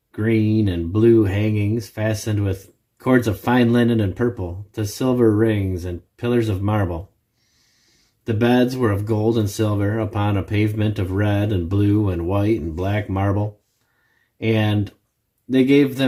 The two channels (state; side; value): identical; both; correlation 1.00